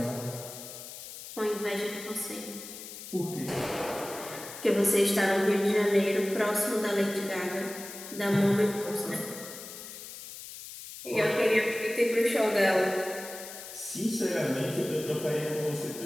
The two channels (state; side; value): noise; left; hiss, 12 dB below the sound